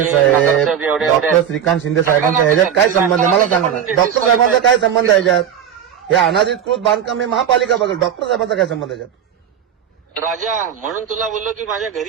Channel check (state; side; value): quieter; left; 8.8 dB